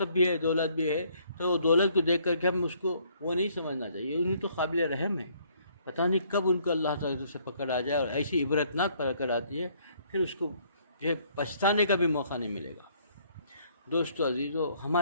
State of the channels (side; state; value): both; inverted; correlation -0.64